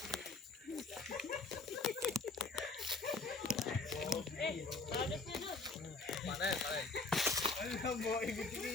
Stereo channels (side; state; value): right; quieter; 3.7 dB